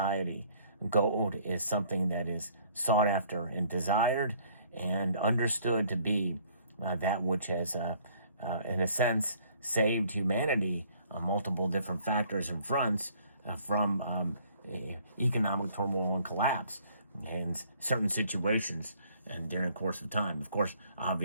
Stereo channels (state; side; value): inverted; both; correlation -0.60